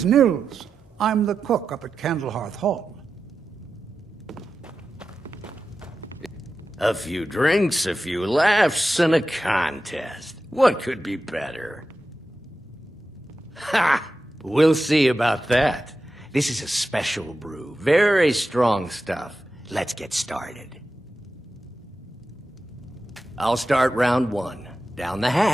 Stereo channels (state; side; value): normal; both; correlation 0.91